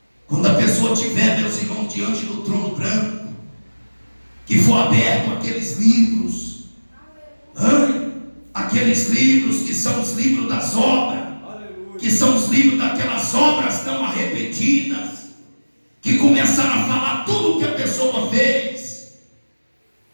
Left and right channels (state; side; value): inverted; both; correlation -1.00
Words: Quando a pessoa tiver, meus irmãos, diante do trono branco, que for aberto aqueles livros, aqueles livros que são os livros das obras, que são os livros daquelas obras não arrependidas, que começaram a falar tudo o que a pessoa fez.